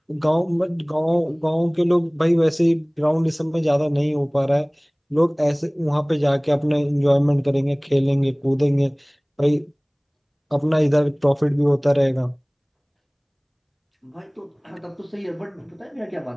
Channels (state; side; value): identical; both; correlation 1.00